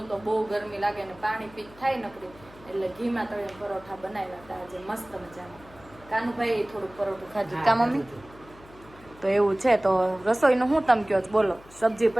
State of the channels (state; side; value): noise; left; hum, 22 dB below the sound